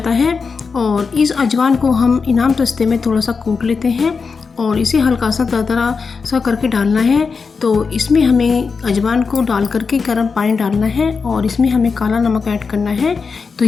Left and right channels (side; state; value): right; quieter; 5.1 dB